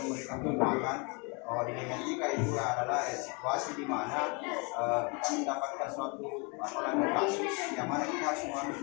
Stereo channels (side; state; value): right; quieter; 31.6 dB